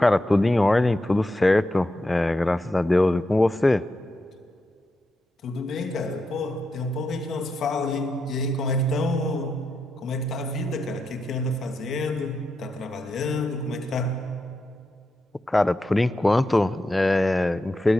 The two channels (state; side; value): normal; both; correlation 0.86